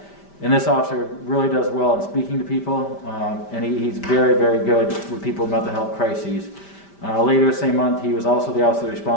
And this officer really does well in speaking to people, and he's very, very good with people with mental health crises. Later the same month, he was also the officer that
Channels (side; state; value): right; late; 5.1 ms